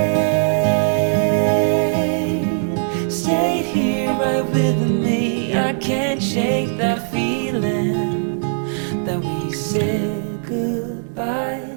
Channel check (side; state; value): left; silent; digital silence